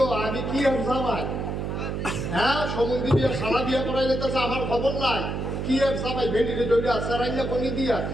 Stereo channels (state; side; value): noise; right; hum, 3 dB below the sound